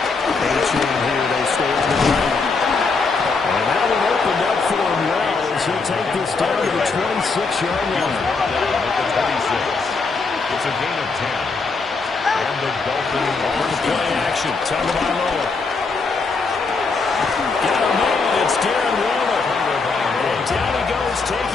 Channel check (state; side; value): quieter; right; 4.3 dB